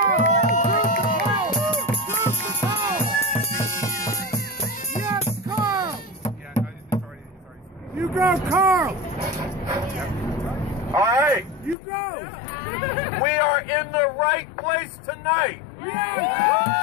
Yes, Carl! Yeah, no, it's already. You go, Carl! All right. You go! We are in the right place tonight.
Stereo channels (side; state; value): right; drops out; at 11.8 s